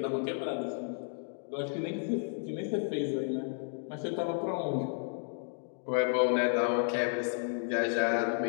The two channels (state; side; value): silent; right; 56 dB below the other